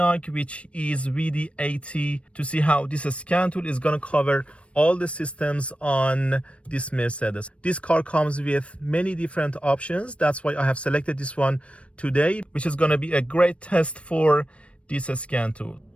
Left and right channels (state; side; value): late; right; 0.061 ms